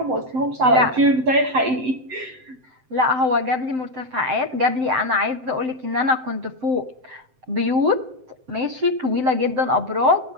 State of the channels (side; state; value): left; late; 7.8 ms